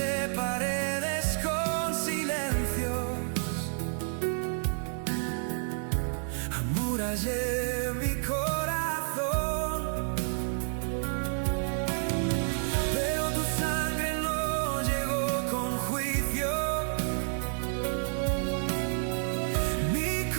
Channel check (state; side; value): silent; left; 58 dB below the other